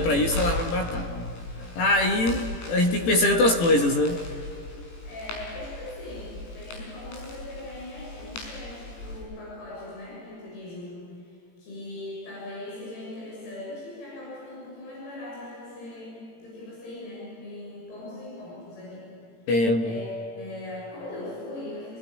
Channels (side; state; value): right; late; 18 ms